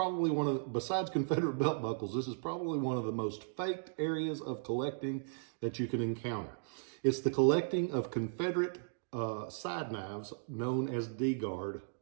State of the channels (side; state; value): left; silent; digital silence